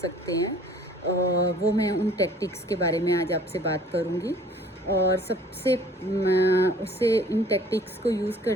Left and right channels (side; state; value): both; normal; correlation 0.53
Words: हैं वो मैं उन टैक्टिक्स के बारे में आज आपसे बात करूँगी। और सबसे उससे इन टैक्टिक्स को यूज़